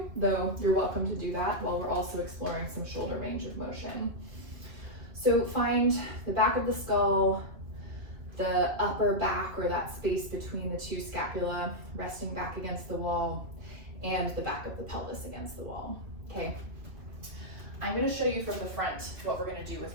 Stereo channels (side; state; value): left; late; 2.4 ms